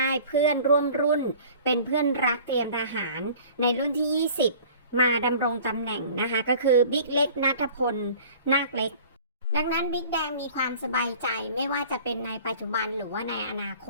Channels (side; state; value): both; inverted; correlation -0.46